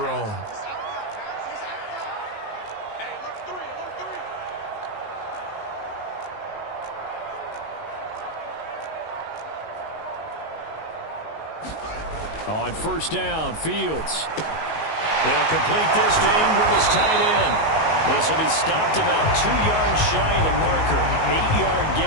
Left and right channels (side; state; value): right; late; 19 ms